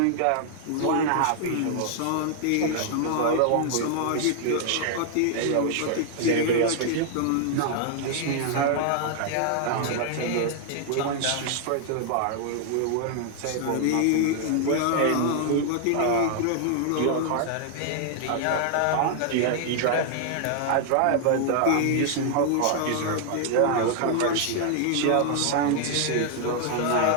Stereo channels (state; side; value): different; both; correlation 0.00